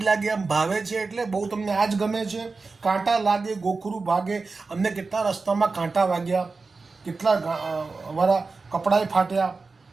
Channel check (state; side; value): quieter; left; 4.1 dB